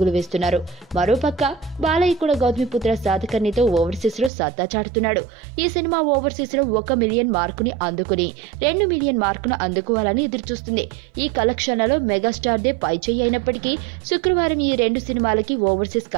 వేస్తున్నారు. మరోపక్క బాలయ్య కూడా గౌతమిపుత్ర శాతకర్ణితో ఓవర్సీస్ లో సత్తా చాటుతున్నాడు. ఈ సినిమా ఓవర్సీస్ లో 1 మిలియన్ మార్కుని అందుకుని 2 మిలియన్ మార్కును అందుకోవాలని ఎదురుచూస్తుంది. ఈ కలెక్షన్లలో మెగాస్టార్ దే పై చేయి అయినప్పటికీ శుక్రవారం ఈ రెండు సినిమాలకి ఓవర్సీస్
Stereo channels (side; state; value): left; drops out; at 4.3 s